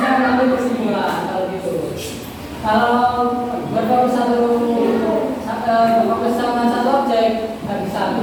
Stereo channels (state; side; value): identical; both; correlation 1.00